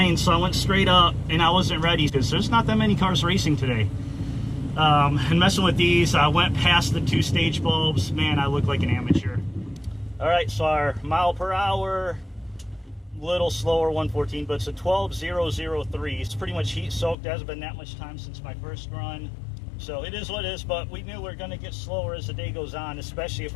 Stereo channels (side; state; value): right; drops out; at 17.2 s